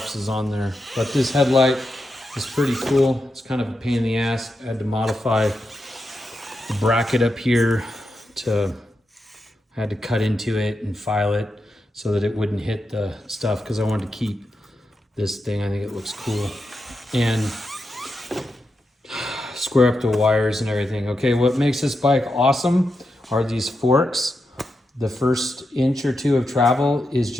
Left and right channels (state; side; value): normal; both; correlation 0.87